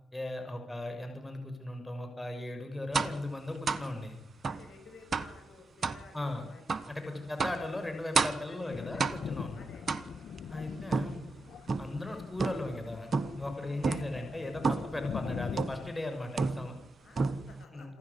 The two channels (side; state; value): both; normal; correlation 0.87